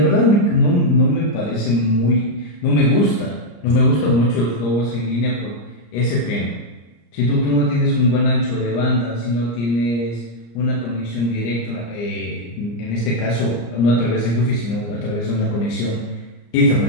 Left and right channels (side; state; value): right; late; 34 ms